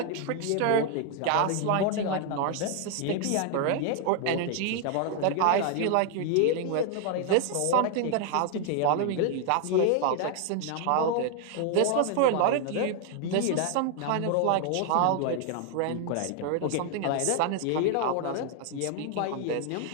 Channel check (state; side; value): different; both; correlation 0.00